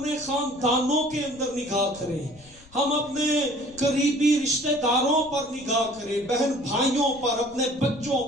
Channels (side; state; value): left; noise; rumble, 24 dB below the sound